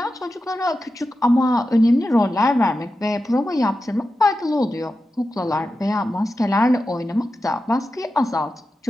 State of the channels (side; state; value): both; normal; correlation 0.91